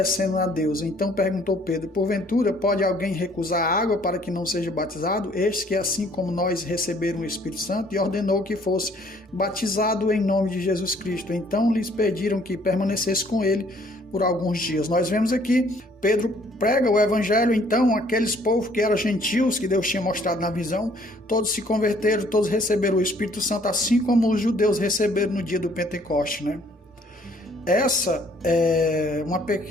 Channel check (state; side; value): normal; both; correlation 0.61